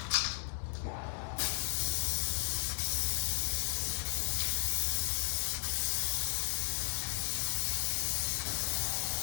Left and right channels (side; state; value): right; silent; digital silence